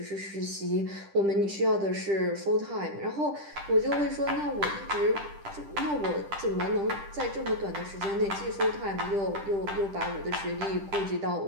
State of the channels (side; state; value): left; late; 10 ms